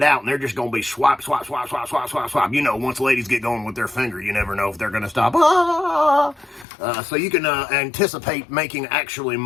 out and they're just going to be swipe, swipe, swipe, swipe, swipe, swipe, swipe. You know, once ladies get going with their finger, you never know if they're going to stop. So you can anticipate making actually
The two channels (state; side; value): drops out; right; at 6.7 s